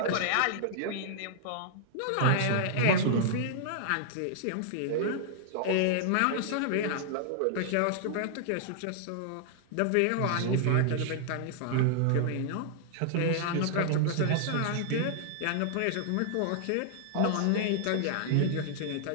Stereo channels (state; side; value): different; both; correlation -0.01